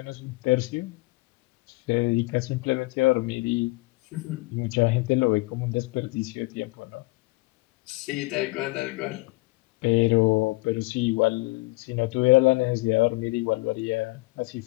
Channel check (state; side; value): quieter; right; 22.9 dB